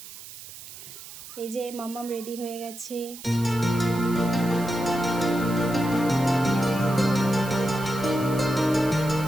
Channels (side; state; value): right; noise; hiss, 14 dB below the sound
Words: এই যে মাম্মাম রেডি হয়ে গেছে।